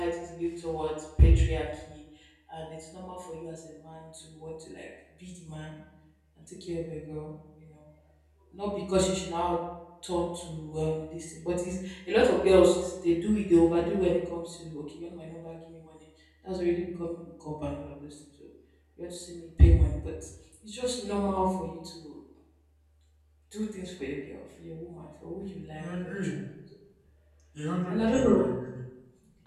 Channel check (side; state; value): both; identical; correlation 1.00